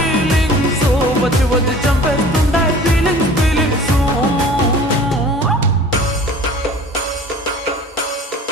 వచ్చి వచ్చి చంపేస్తుండాయి ఫీలింగ్స్ ఫీలింగ్స్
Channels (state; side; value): normal; both; correlation 0.45